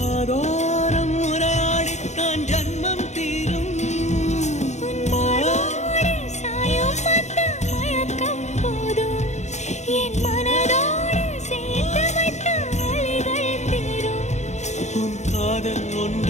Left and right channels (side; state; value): right; late; 0.33 ms